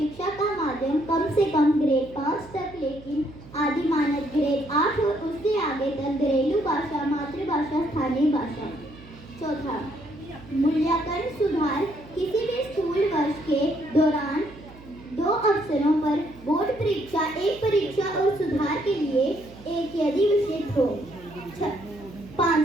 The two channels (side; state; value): right; noise; hum, 20 dB below the sound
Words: का माध्यम कम से कम ग्रेड 5 तक लेकिन आदि मानक ग्रेड 8 और उससे आगे तक घरेलू भाषा, मातृभाषा, स्थानीय भाषा। चौथा, मूल्यांकन सुधार, किसी भी स्कूल वर्ष के दौरान 2 अवसरों पर बोर्ड परीक्षा, एक परीक्षा और सुधार के लिए एक यदि विषय हो।